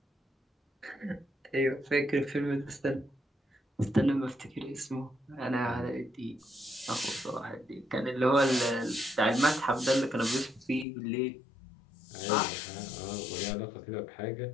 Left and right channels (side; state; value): right; drops out; at 10.9 s